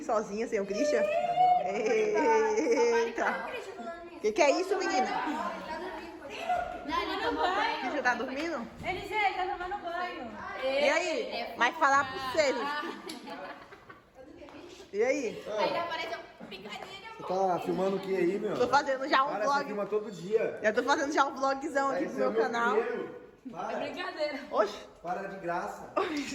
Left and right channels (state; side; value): identical; both; correlation 1.00